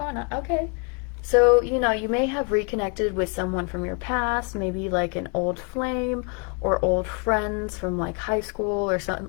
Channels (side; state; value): right; quieter; 36.8 dB